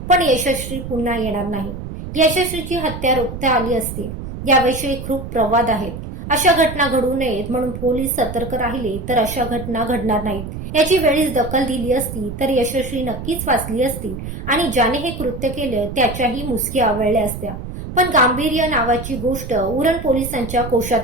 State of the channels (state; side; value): noise; right; rumble, 8 dB below the sound